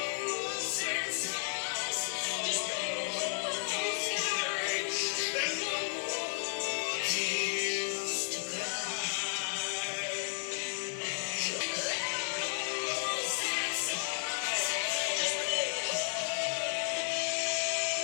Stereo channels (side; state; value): right; silent; 55 dB below the other